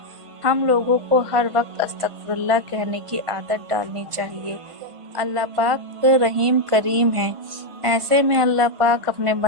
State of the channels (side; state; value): left; late; 1.5 ms